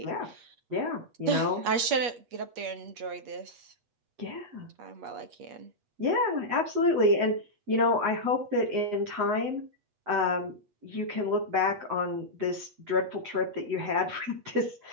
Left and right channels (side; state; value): left; late; 8.4 ms